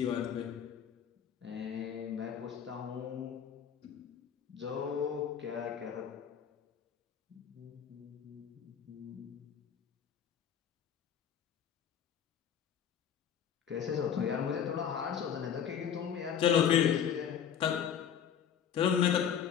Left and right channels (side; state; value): right; quieter; 8.4 dB